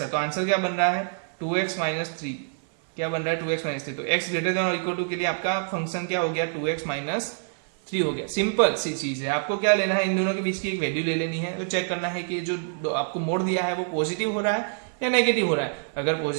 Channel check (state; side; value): silent; left; 61 dB below the other